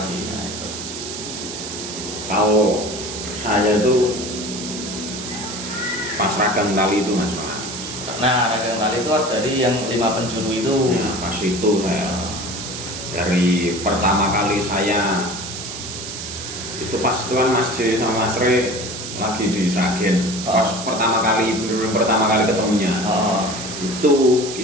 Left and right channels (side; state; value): right; noise; hiss, 8 dB below the sound